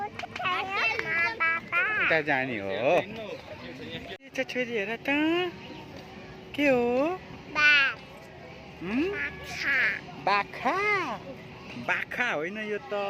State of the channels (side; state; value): both; identical; correlation 1.00